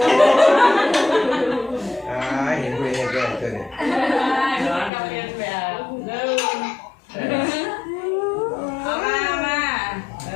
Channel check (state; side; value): drops out; right; at 4.9 s